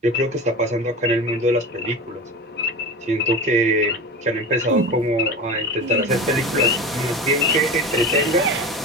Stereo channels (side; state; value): both; normal; correlation 0.29